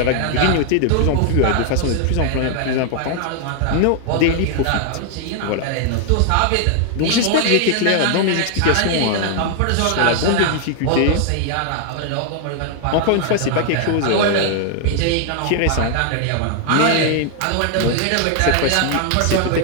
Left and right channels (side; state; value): both; different; correlation 0.00